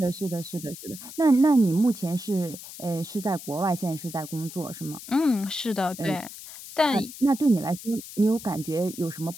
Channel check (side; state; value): left; noise; hiss, 14 dB below the sound